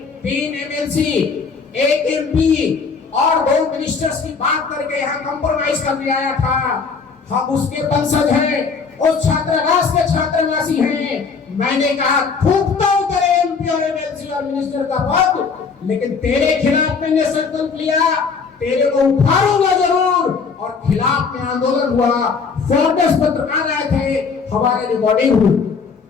3 एमएलसी, 1 एमपी और 2 मिनिस्टर्स की बात करके यहाँ कंप्रोमाइज करने आया था। हम उसके वंशज हैं, उस छात्रावास के छात्रावासी हैं। मैंने कहा थूकता हूं तेरे एमपी और एमएलसी और मिनिस्टर का पद, लेकिन तेरे खिलाफ मैंने संकल्प लिया, तेरे को उठाऊंगा जरूर। और खिलाफ में आंदोलन हुआ, फोर्स पत्रकार आए थे, हमारे रिकॉर्डिंग हुई,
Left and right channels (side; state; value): right; quieter; 5.3 dB